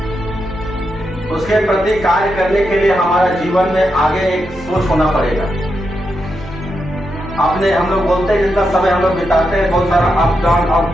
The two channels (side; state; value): both; normal; correlation 0.85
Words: उसके प्रति कार्य करने के लिए हमारा जीवन में आगे एक सोच होना पड़ेगा। अपने हम लोग बोलते हैं जितना समय हम लोग बिताते हैं, बहुत सारा अप